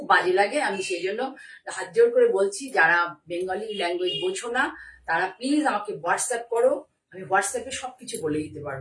বাজে লাগে। আমি সেই জন্য হাত জোর করে বলছি, যারা বেঙ্গলি ল্যাঙ্গুয়েজ বোঝো না তারা প্লিজ আমাকে হোয়াটসঅ্যাপ করো, আমি হোয়াটসঅ্যাপে সবকিছু বলে দিতে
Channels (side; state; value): both; identical; correlation 1.00